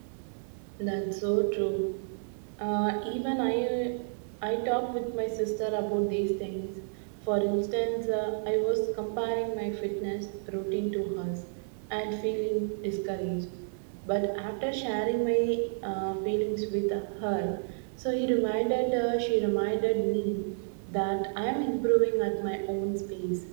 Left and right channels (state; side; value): silent; left; digital silence